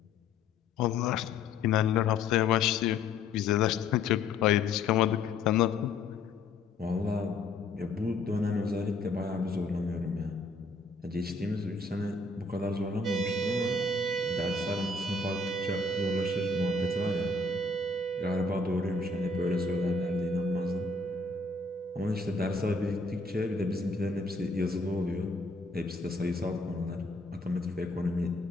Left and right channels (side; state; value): right; quieter; 3.6 dB